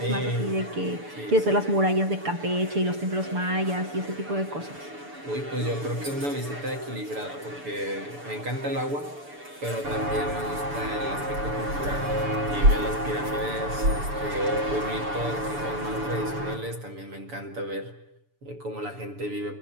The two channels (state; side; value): late; left; 6.9 ms